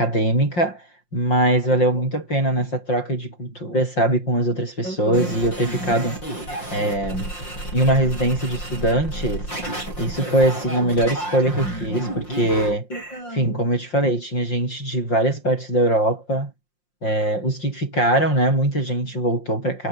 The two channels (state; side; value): late; right; 5.7 ms